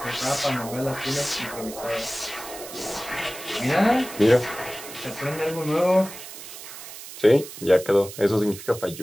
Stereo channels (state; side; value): noise; right; hiss, 13 dB below the sound